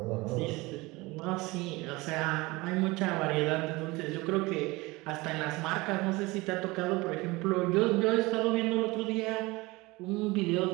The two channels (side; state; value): left; quieter; 22.5 dB